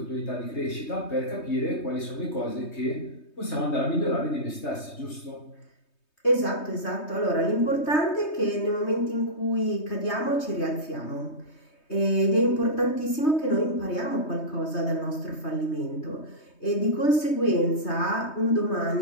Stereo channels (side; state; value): right; late; 3.2 ms